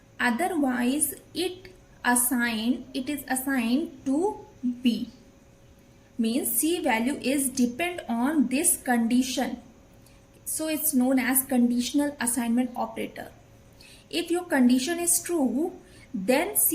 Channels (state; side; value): identical; both; correlation 1.00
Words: Otherwise it is assigned to B. Means C value is depend on this condition. So it's known as conditional assignment operator. If your condition is true, then